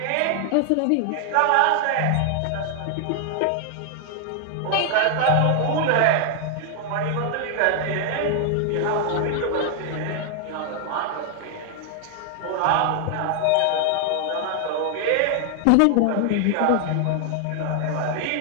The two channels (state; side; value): different; both; correlation 0.00